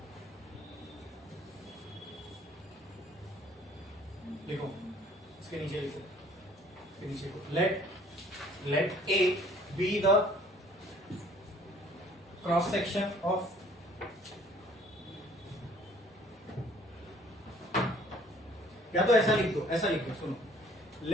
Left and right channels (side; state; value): both; normal; correlation 0.56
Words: लिखो, इसके नीचे लिखो, इसके नीचे लिखो, let A B the cross section of या तो ऐसा लिख दो, ऐसा लिख दो, सुनो,